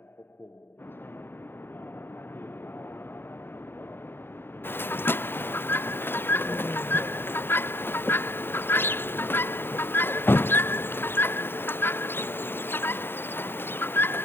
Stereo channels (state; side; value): late; right; 0.11 ms